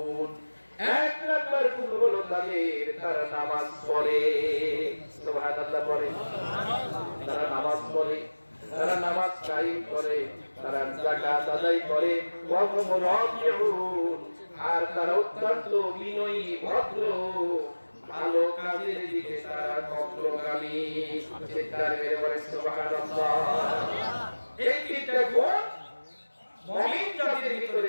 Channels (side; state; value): both; inverted; correlation -1.00